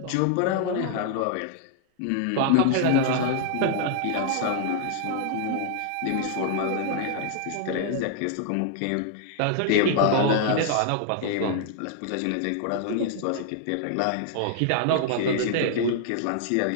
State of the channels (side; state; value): both; different; correlation 0.00